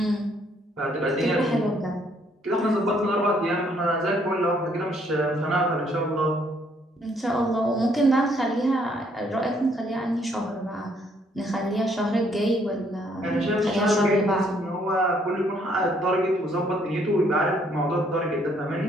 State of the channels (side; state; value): both; normal; correlation 0.67